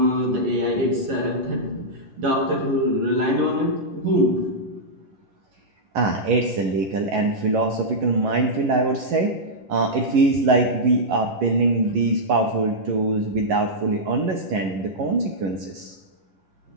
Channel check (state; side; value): late; left; 11 ms